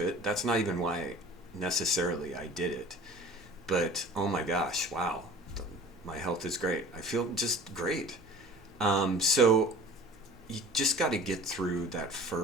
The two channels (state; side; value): normal; both; correlation 0.43